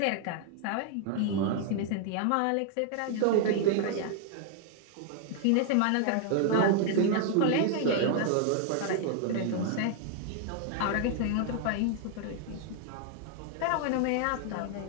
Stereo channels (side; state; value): both; different; correlation 0.00